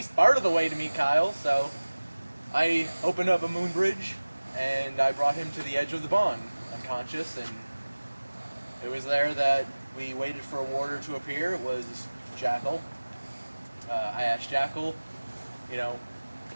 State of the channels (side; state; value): both; inverted; correlation -1.00